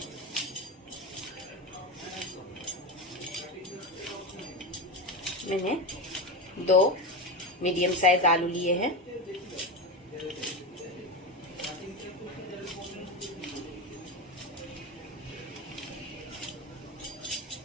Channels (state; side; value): normal; both; correlation 0.19